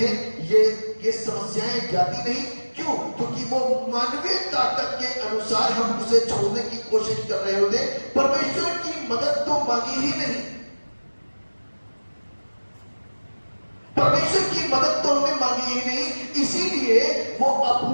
ये समस्याएं जाती नहीं। क्यों? क्योंकि वो मानवीय ताकत के अनुसार हम उसे छोड़ने की कोशिश कर रहे होते। परमेश्वर की मदद तो मांगी ही नहीं, परमेश्वर की मदद तो हमने मांगी ही नहीं, इसीलिए वो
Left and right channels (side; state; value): both; inverted; correlation -1.00